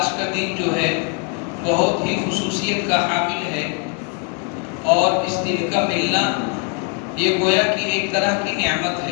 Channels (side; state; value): right; quieter; 35.9 dB